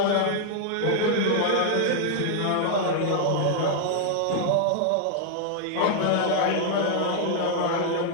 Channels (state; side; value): different; both; correlation 0.00